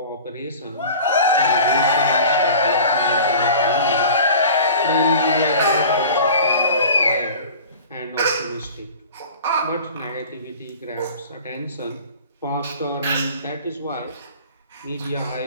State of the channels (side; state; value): both; inverted; correlation -0.41